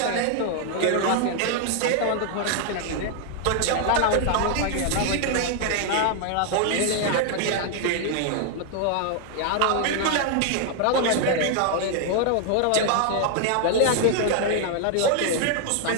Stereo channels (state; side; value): different; both; correlation 0.00